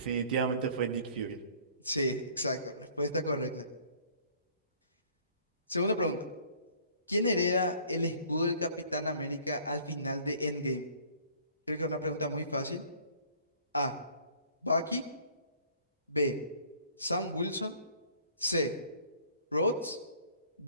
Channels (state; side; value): inverted; both; correlation -0.55